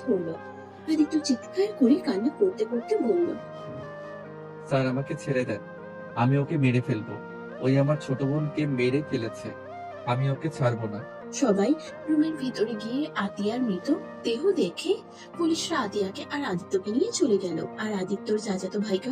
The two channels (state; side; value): identical; both; correlation 1.00